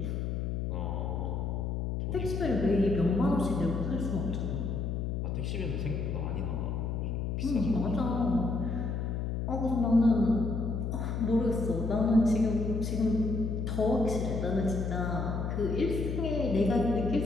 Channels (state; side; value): noise; left; hum, 1 dB below the sound